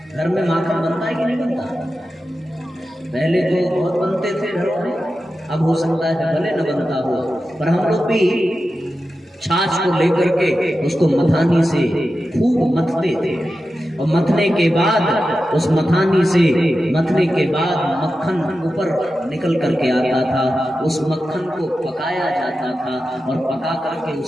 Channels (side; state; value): both; normal; correlation 0.92